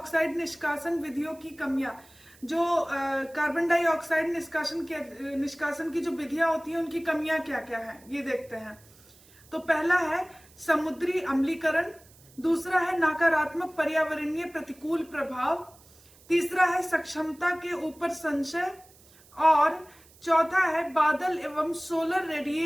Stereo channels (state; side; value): noise; right; hiss, 26 dB below the sound